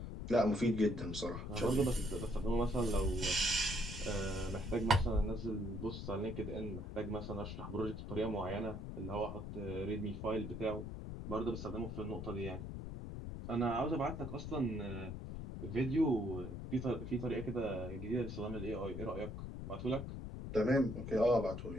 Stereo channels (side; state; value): left; noise; rumble, 7 dB below the sound